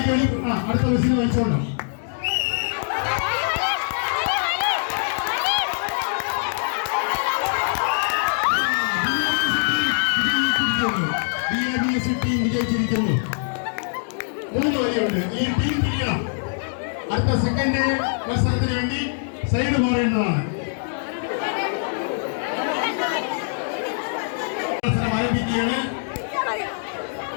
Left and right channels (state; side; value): silent; right; digital silence